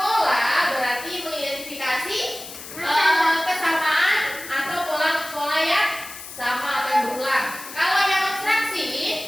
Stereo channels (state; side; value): noise; left; hiss, 13 dB below the sound